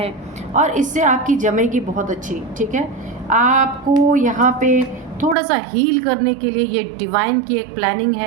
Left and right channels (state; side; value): drops out; left; at 5.4 s